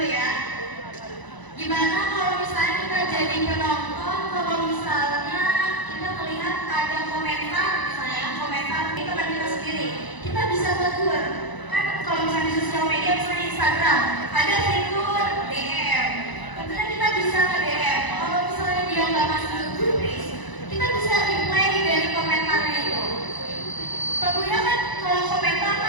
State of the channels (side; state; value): right; late; 1.0 ms